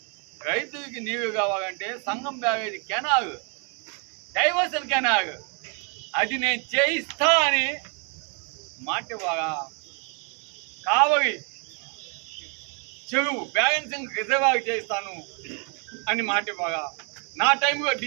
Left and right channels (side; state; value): left; quieter; 37.3 dB